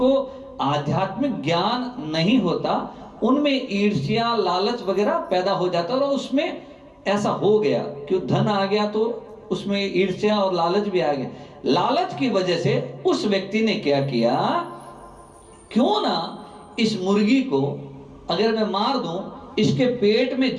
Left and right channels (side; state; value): both; identical; correlation 1.00